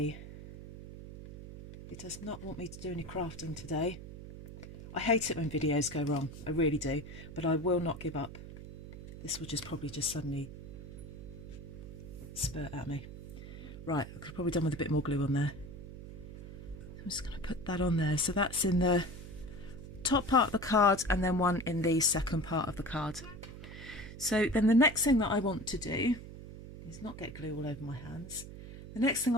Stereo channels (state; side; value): noise; right; hum, 13 dB below the sound